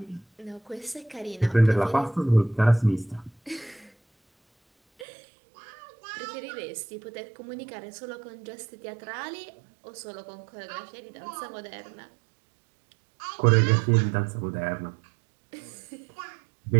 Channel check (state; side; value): drops out; left; at 5.1 s